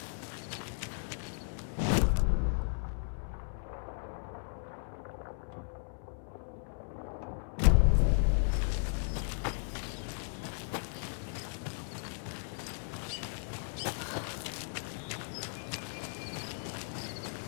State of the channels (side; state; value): right; silent; 54 dB below the other